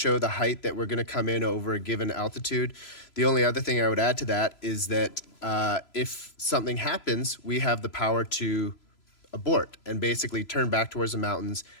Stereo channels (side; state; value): right; late; 3.0 ms